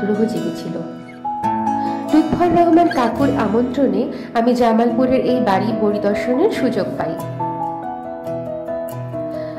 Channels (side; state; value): both; identical; correlation 1.00